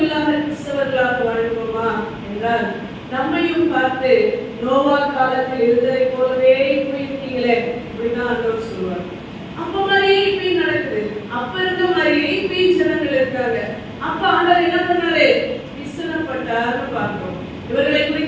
இல்லாத கிறிஸ்தவர்களாக வாழ்வோமா என்றால் நம்மையும் பார்த்து நோவா காலத்தில் இருந்ததை போலவே போயிருக்கீங்களே இப்படிதான் ஆண்டவர் சொல்லுவார். அப்ப மாதிரியே இப்படி நடக்குது. அப்ப இருந்த மாதிரியே இப்படி ஜனங்கள் இருக்காங்க. அப்ப ஆண்டவர் என்ன பண்ணாரு? விசனப்பட்டார்னு பார்க்கிறோம். இவர்களை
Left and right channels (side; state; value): both; identical; correlation 1.00